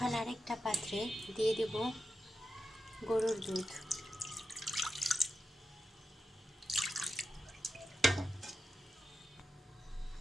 আরেকটা পাত্রে দিয়ে দেব গরুর দুধ।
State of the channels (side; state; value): both; normal; correlation 0.89